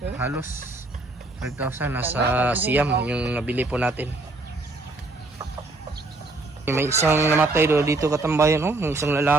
halos 5,000 nasa siyam yung nabili po natin. May isang namatay dito katambayan, yung isang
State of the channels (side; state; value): left; quieter; 3.0 dB